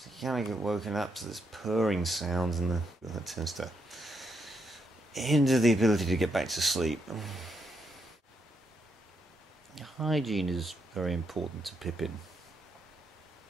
you kind of get woken up to this purring sound, and that tends to hinder the ability to get back to sleep. Hygiene is very important to Pippin.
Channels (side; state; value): both; normal; correlation 0.79